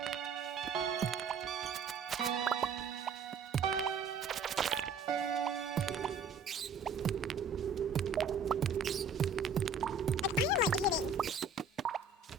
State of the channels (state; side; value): quieter; left; 4.5 dB